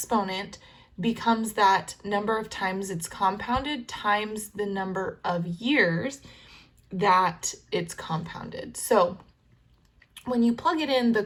becomes that number of times it's compounded times the number of years that it's compounded. So when you plug it in,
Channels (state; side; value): identical; both; correlation 1.00